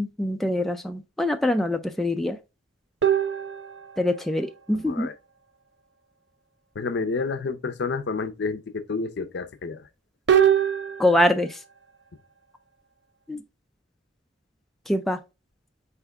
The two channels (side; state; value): both; normal; correlation 0.52